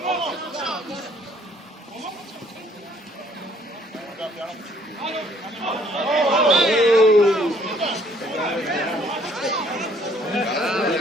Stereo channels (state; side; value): normal; both; correlation 0.62